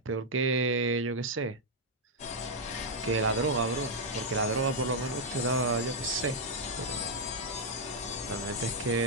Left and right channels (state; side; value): normal; both; correlation -0.03